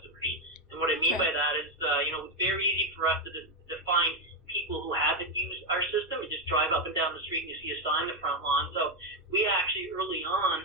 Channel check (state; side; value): normal; both; correlation 0.06